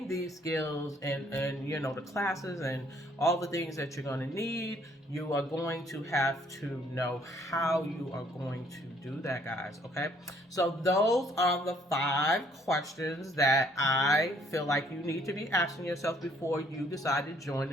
these skills and the classes and all the things that you're going to need, you are going to have to know how you are going to do that, guys. Okay, so those are the 5 questions that I feel like you need to be asking yourself before you decide to join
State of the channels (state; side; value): normal; both; correlation 0.63